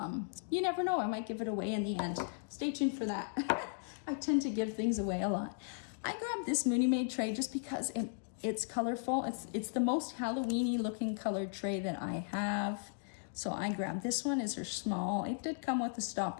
You never know, I might give it away in the end. Stay tuned for that. I tend to give things away a lot. I grabbed this Mooney Made tray just because it's colorful. It's the most Halloween-y looking colored tray that I have. So I grabbed this one. It's her small. It did come with a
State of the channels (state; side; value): silent; right; digital silence